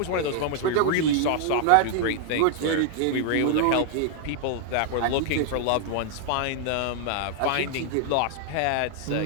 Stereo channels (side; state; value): both; different; correlation 0.00